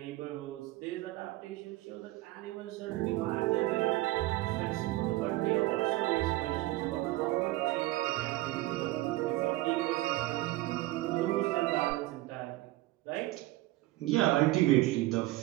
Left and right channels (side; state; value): left; quieter; 18.3 dB